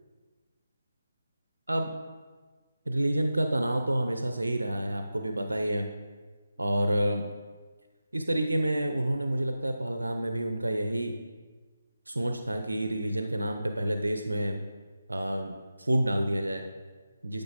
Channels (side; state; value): both; inverted; correlation -0.93